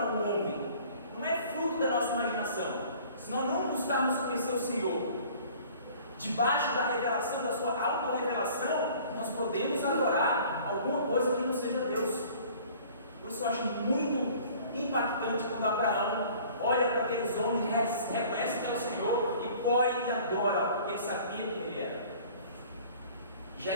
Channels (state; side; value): inverted; both; correlation -0.50